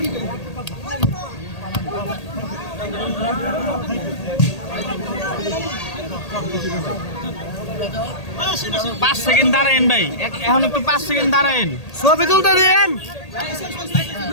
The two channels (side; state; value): right; late; 1.8 ms